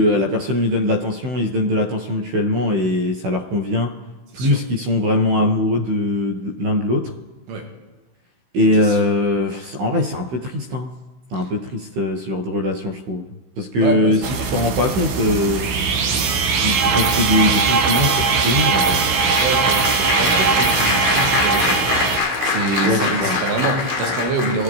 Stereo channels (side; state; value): left; late; 16 ms